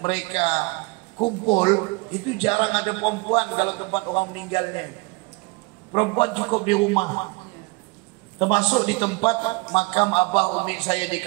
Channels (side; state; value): left; quieter; 26.3 dB